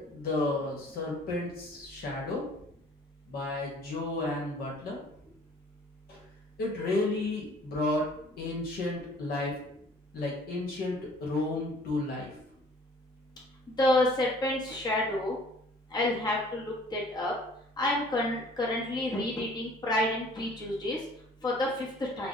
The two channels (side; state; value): both; normal; correlation 0.54